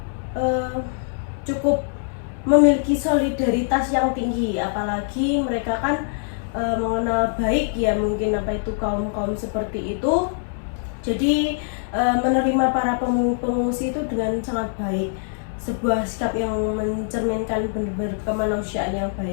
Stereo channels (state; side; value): silent; right; 58 dB below the other